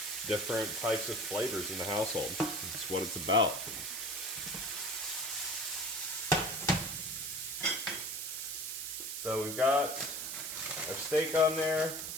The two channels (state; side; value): noise; right; hiss, 5 dB below the sound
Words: different types of flavors in the household. That's what it's about. So we've got our steak on there.